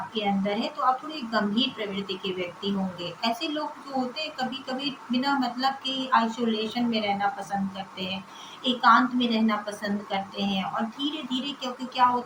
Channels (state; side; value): identical; both; correlation 1.00